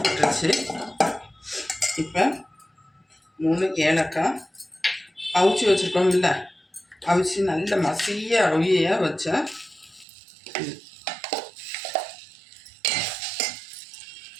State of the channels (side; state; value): left; drops out; at 10.1 s